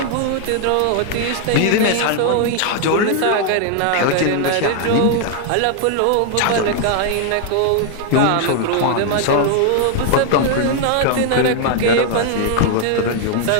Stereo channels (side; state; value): both; different; correlation 0.00